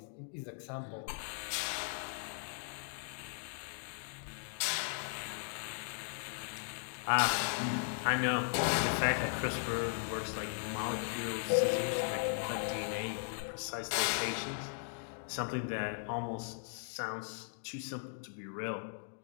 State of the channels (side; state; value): right; silent; digital silence